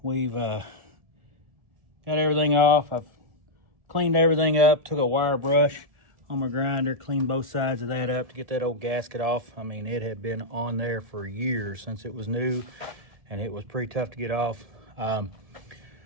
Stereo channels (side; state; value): left; late; 1.7 ms